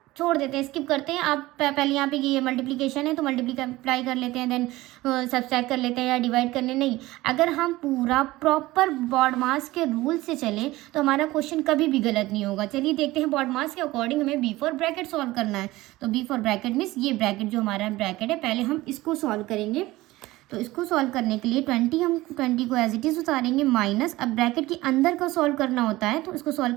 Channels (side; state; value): left; quieter; 18.4 dB